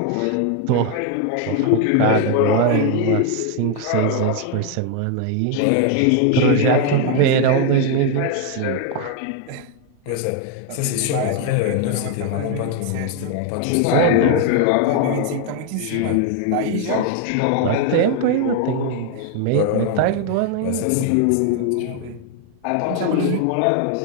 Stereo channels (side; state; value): both; different; correlation 0.00